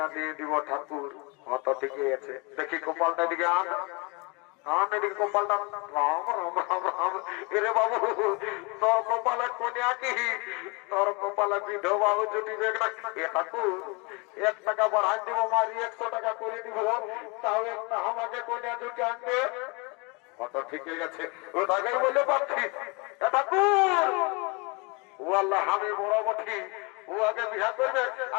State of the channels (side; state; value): right; quieter; 29.3 dB